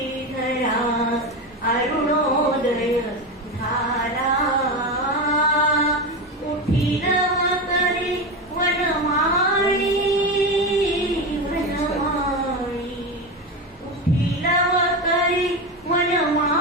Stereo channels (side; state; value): both; normal; correlation 0.18